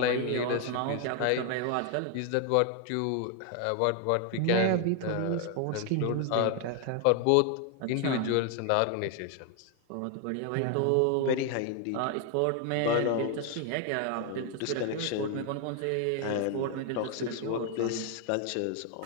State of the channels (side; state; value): both; different; correlation 0.01